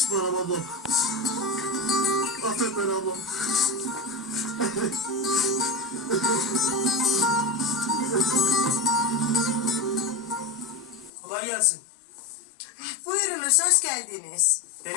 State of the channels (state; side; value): drops out; right; at 11.1 s